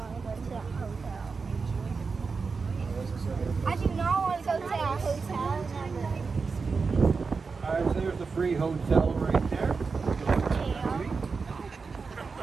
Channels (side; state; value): left; quieter; 4.8 dB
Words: to go to that hotel. I do not want to go to that hotel. Never. Alright, so there's the free hotel right there.